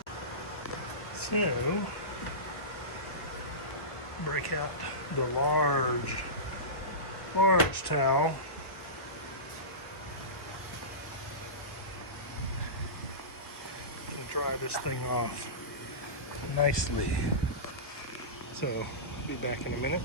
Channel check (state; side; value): late; right; 1.3 ms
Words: So break out the large towel. And dry this thing off nicely. So I'll be back in a minute